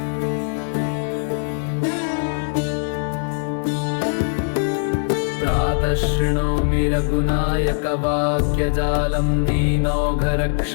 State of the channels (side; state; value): right; silent; 65 dB below the other